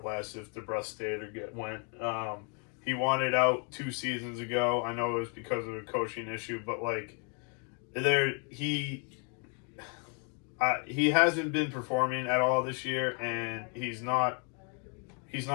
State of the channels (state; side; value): quieter; right; 38.0 dB